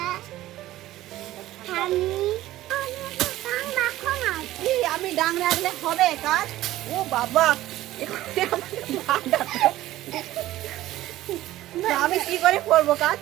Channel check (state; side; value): quieter; left; 15.3 dB